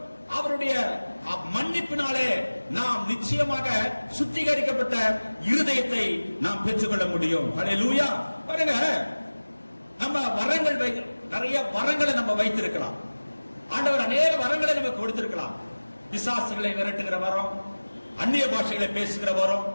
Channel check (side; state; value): both; inverted; correlation -1.00